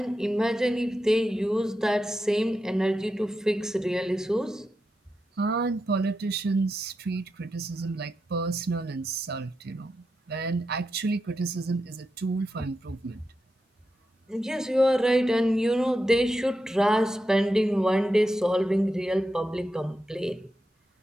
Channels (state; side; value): normal; both; correlation 0.87